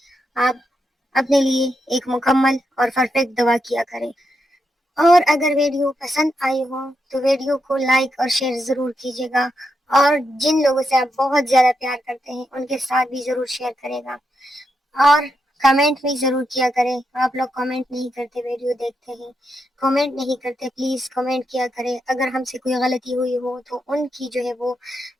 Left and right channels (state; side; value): normal; both; correlation 0.84